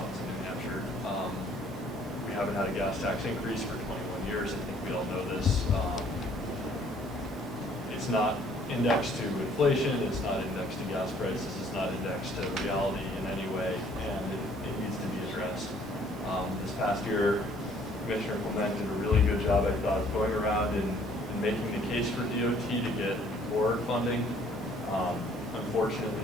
in New Hampshire. We haven't had a gas tax increase for 21 years. I think we all know this. It's not indexed to inflation, it's not indexed to gas prices, it's not indexed to reality in any way, and it needs to be addressed. This past year, Commissioner Clement did a really good job, I thought, of going around and making the case for DOT to get more funding. Unfortunately,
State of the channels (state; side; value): normal; both; correlation 0.60